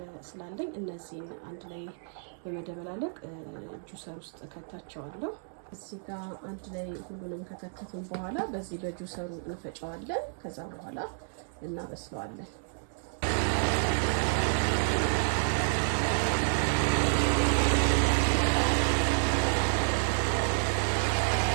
ስላለኝ እነዚህን አንድ ላይ በመደበላለቅ ጁሰር ውስጥ ከታቸዋለሁ። እዚህ ጋር አንድ ላይ ሁሉንም ከከተትን በኋላ በዚህ በጁሰሩ እንፈጨዋለን። ከዛ በኋላ እናበስለዋለን።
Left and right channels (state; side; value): silent; left; digital silence